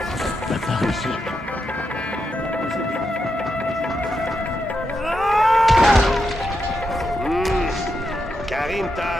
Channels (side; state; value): both; normal; correlation 0.85